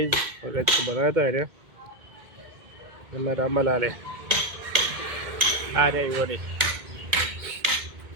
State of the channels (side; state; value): left; late; 2.2 ms